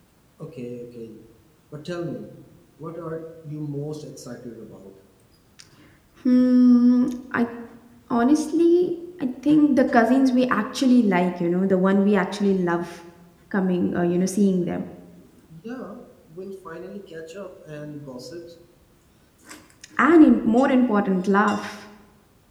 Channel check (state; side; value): identical; both; correlation 1.00